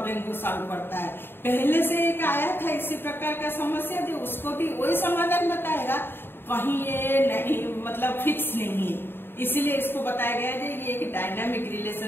को सॉल्व करता है। पहले से एक आया था इसी प्रकार का समस्या, जो उसको भी वही समाधान बताएगा, कहीं ये नहीं मतलब फिक्स नहीं है, इसीलिए इसको बताया गया है ये एक dynamic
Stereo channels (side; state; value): right; late; 0.10 ms